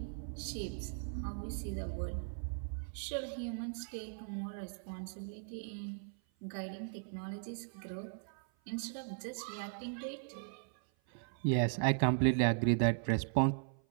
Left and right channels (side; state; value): left; silent; 52 dB below the other